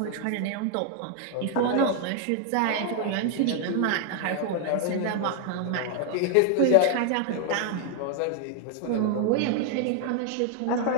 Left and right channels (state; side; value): different; both; correlation 0.00